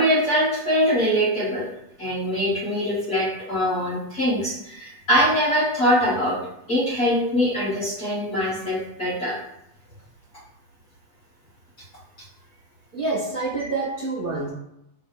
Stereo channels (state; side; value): late; right; 8.2 ms